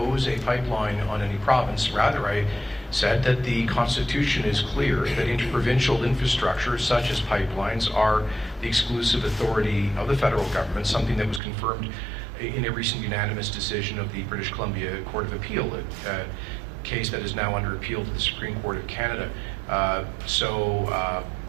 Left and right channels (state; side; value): drops out; left; at 11.4 s